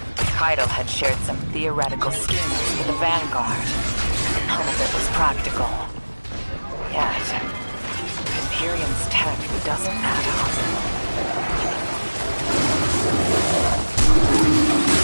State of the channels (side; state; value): both; inverted; correlation -1.00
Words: Kaido had shared some theoretical schemes with the Vanguard. None of it was practical. Yet, Imperium's tech doesn't add up.